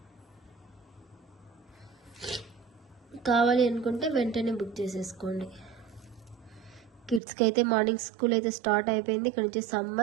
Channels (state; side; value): drops out; left; at 7.2 s